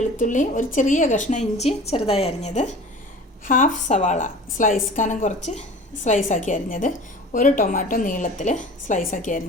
ഒരു ചെറിയ കഷ്ണം ഇഞ്ചി ചെറുതായി അരിഞ്ഞത്, ഹാഫ് സവാള സ്ലൈസ് കനം കുറച്ച് സ്ലൈസാക്കി അരിഞ്ഞത്, 1 ടൊമാറ്റോ നീളത്തിൽ സ്ലൈസാക്കി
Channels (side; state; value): both; normal; correlation 0.41